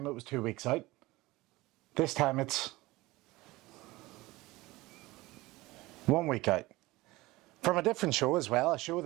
it was 2 weeks out. This time it's 1 week out. From a different show as well, a show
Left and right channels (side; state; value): left; quieter; 20.1 dB